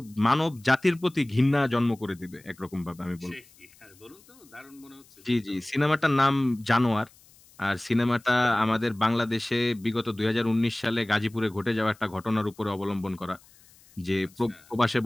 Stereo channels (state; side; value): noise; left; hiss, 27 dB below the sound